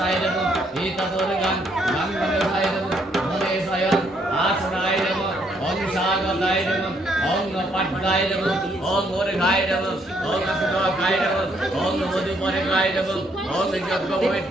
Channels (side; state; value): both; normal; correlation 0.71